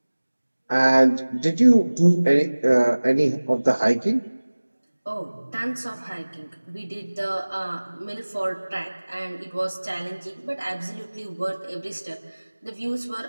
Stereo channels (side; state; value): both; inverted; correlation -1.00